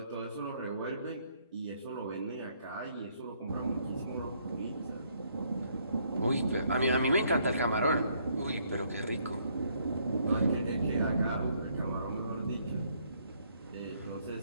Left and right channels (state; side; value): inverted; both; correlation -0.69